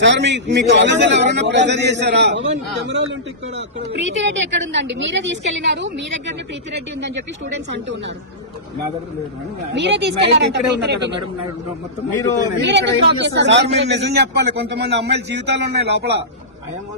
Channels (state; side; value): normal; both; correlation -0.18